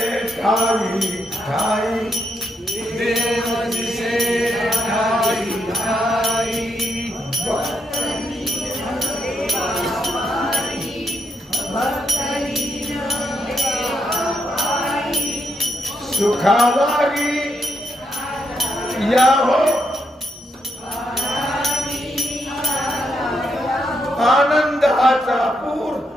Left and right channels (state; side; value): normal; both; correlation 0.80